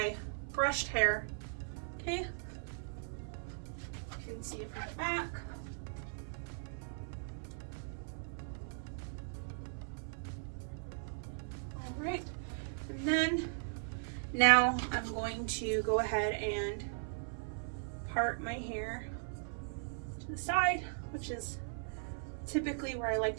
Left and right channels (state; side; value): silent; left; 52 dB below the other